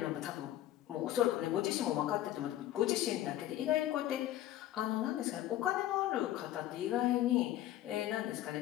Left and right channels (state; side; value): quieter; right; 13.5 dB